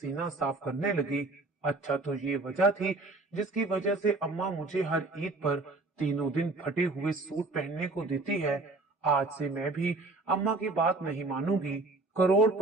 साफ करने लगी। अच्छा, तो ये वजह थी जिसकी वजह से अम्मा मुझे हर ईद पर तीनों दिन फटे हुए सूट पहनने को देती है। आज से मैं भी अम्मा की बात नहीं मानूंगी।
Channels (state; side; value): quieter; left; 3.3 dB